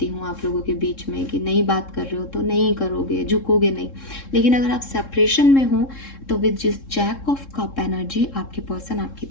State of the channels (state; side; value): late; right; 3.7 ms